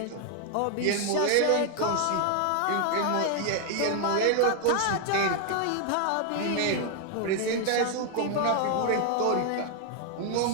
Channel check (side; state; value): both; different; correlation 0.00